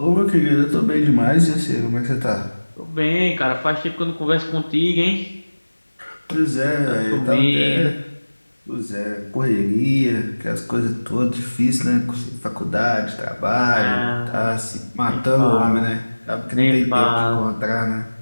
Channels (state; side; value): inverted; both; correlation -1.00